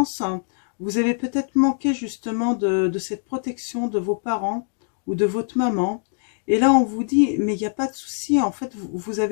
hein, vous avez peut-être manqué justement de cette protection de vos parents ou de votre maman. Et là, on vous dit, mais il n'y a pas de souci, en fait, vous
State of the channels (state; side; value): silent; right; digital silence